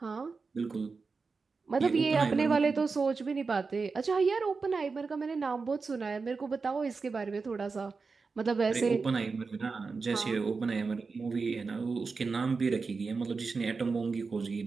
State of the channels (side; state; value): left; quieter; 4.5 dB